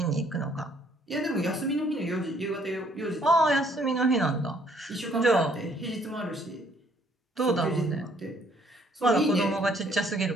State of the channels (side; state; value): both; normal; correlation 0.64